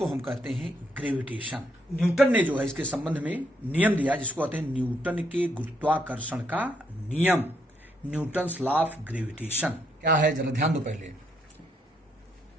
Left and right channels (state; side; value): normal; both; correlation 0.75